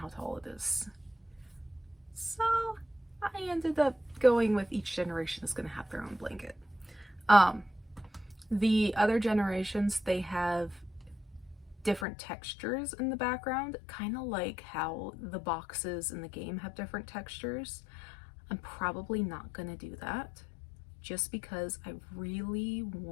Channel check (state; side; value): drops out; right; at 12.1 s